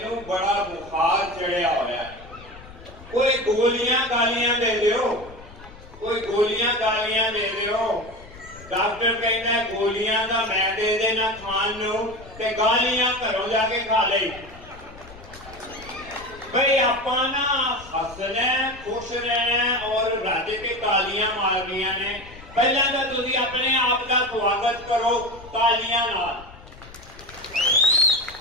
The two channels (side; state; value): left; noise; rumble, 19 dB below the sound